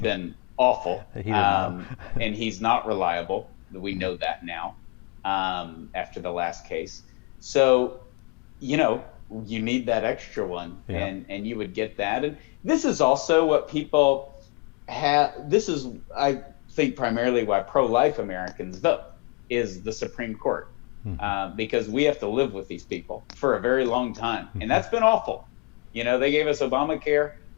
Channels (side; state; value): right; quieter; 28.7 dB